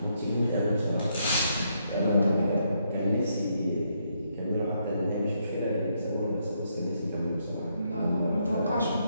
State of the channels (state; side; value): inverted; both; correlation -0.76